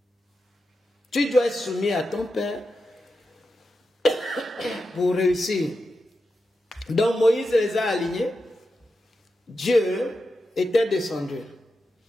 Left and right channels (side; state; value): both; normal; correlation 0.89